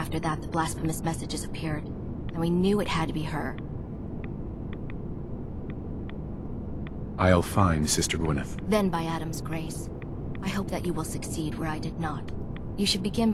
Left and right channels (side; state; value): both; identical; correlation 1.00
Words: that the blasphemous messages appeared, and we knew it had to be her. I'll find Sister Gwyneth. Then by Adam's grace, I hope that you will succeed where I did not. You should begin